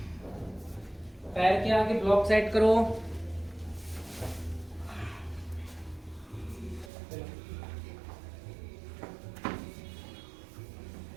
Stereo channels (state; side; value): drops out; left; at 6.9 s